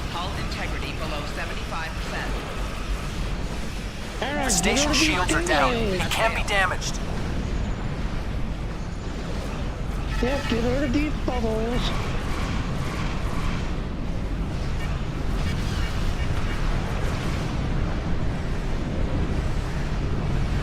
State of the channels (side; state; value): both; identical; correlation 1.00